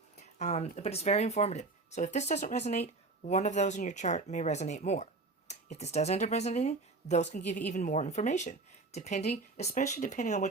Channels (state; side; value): quieter; left; 3.6 dB